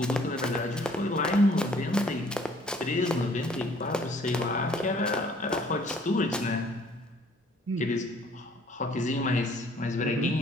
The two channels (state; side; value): normal; both; correlation 0.58